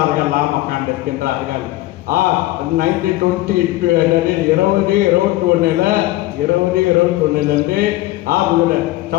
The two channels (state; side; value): quieter; right; 17.1 dB